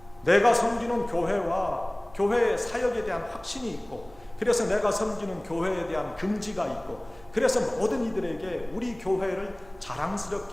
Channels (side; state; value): right; noise; hum, 24 dB below the sound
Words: 내가 섬기는 교회와 교회의 사역에 대한 확신이 있고, 그래서 내가 섬기는 교회에 대한 긍지가 있고, 그래서 모든 이들에게 우리 교회를